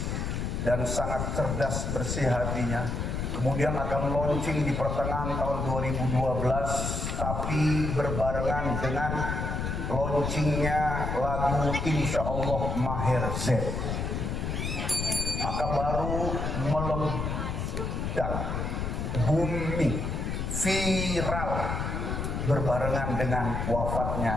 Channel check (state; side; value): noise; left; rumble, 2 dB below the sound